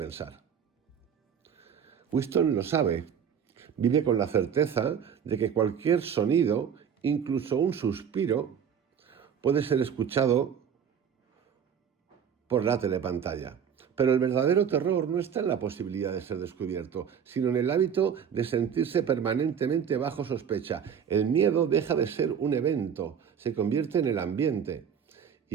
Winston lo sabe. Vive con la certeza de que cualquier sonido, incluso un suspiro, puede ser escuchado por la telepantalla. Pero el verdadero terror no está en la posibilidad de ser descubierto, sino en el hábito de sentirse permanentemente bajo sospecha. El miedo deja de ser un evento, se convierte en el ambiente.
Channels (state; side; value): quieter; left; 7.9 dB